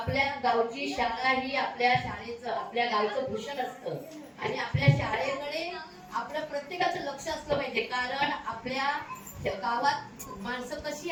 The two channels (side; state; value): both; identical; correlation 1.00